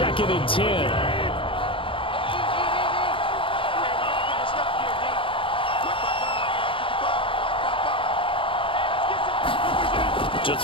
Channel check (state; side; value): late; right; 0.25 ms